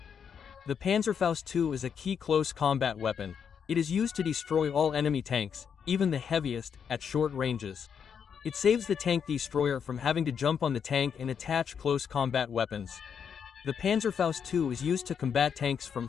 The Panzerfaust II is a key close combat weapon. It is used to destroy all enemy tanks, even the heaviest, at short ranges. It saves the tank destroyer from having to jump on the tank and attach close combat weapons. The Panzerfaust II is used to combat tanks from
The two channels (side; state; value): right; quieter; 7.3 dB